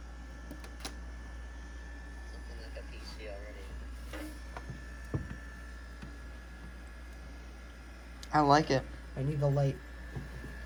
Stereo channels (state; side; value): identical; both; correlation 1.00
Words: Something like a PC already. I like it. I need the light.